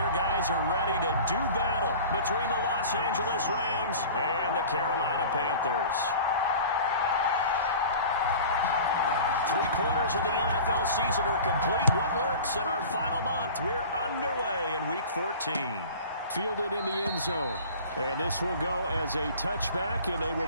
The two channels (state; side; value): inverted; both; correlation -0.40